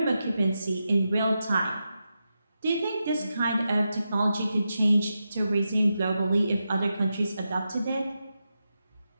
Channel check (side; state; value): both; inverted; correlation -0.88